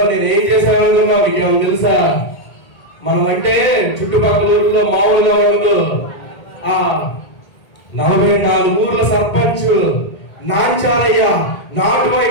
నేను ఏం చేశాను అనుకున్నావు? నీకేమో తెలుసా? మనం అంటే చుట్టుపక్కల ఊర్లో మామూలుగా ఉండదు. 44 ఊర్ల సర్పంచ్ నాంచారయ్య నాటు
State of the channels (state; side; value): late; right; 1.8 ms